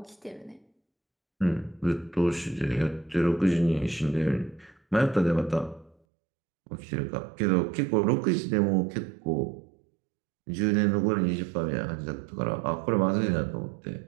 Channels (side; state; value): left; drops out; at 6.0 s